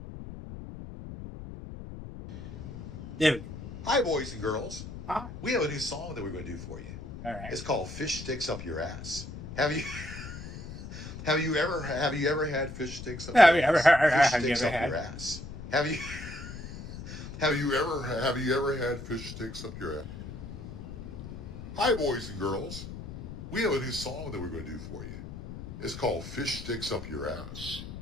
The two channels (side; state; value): left; noise; rumble, 10 dB below the sound